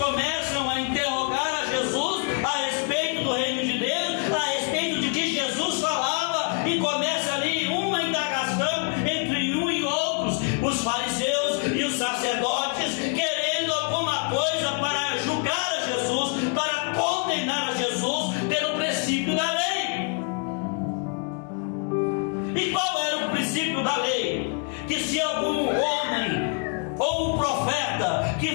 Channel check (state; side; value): quieter; right; 38.9 dB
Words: a interrogar a Jesus a respeito do reino de Deus, a respeito de que Jesus falava, e começa ali uma indagação entre um e outros, os fariseus e os sacerdotes, querendo alguma coisa para julgar a Jesus, para condenar a Jesus pelo princípio da lei. E qual era o princípio da lei? Que se algum homem ou um profeta